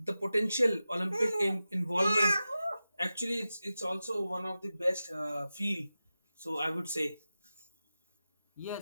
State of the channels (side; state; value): both; inverted; correlation -0.93